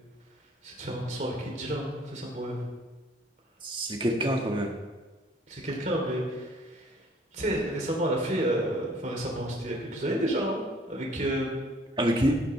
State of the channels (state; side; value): normal; both; correlation 0.58